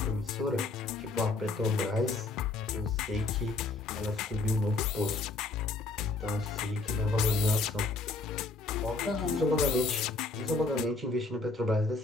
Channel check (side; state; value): right; quieter; 3.5 dB